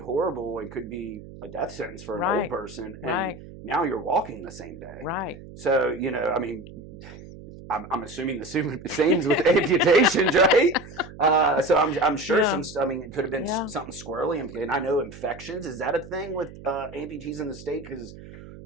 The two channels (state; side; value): noise; right; hum, 16 dB below the sound